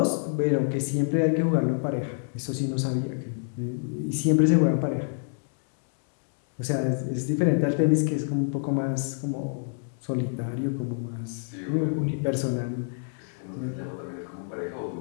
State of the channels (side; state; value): right; silent; digital silence